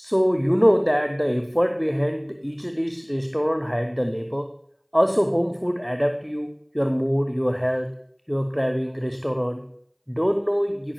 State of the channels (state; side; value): identical; both; correlation 1.00